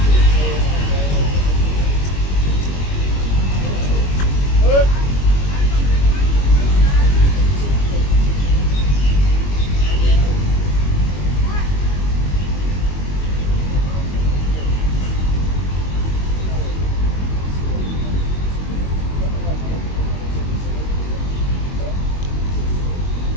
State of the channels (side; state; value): right; late; 22 ms